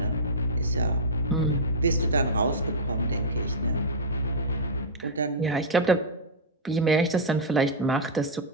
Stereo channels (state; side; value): normal; both; correlation -0.09